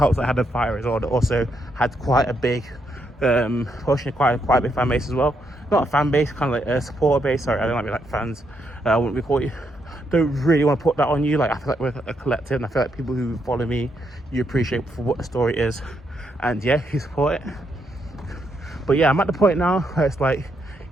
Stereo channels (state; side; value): normal; both; correlation 0.78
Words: that I had a fighter as well that also had quite a big pushing quite a big fan base as well. Not a fan base, kind of like a supporter base. Sorry, I don't like be like fans. I wouldn't be called you. Don't really want to put that on you. Like, I feel like we're a collective, and I feel like people who follow me, you appreciate for what the story is, and yeah, you support it. But yeah, I'm at the point now where it's like,